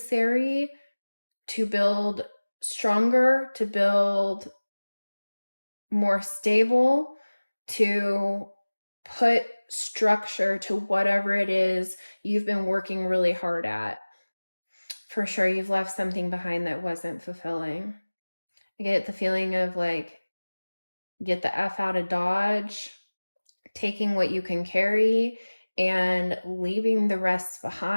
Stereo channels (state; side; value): inverted; both; correlation -1.00